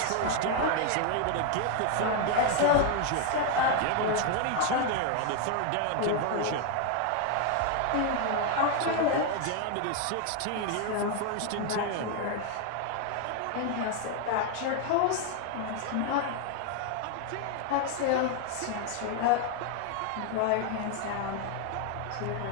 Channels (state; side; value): different; both; correlation 0.01